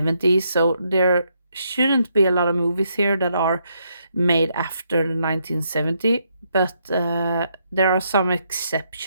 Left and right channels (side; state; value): both; inverted; correlation -0.76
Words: So there shouldn't be a lot of movies here that are made after the 1970, but there are some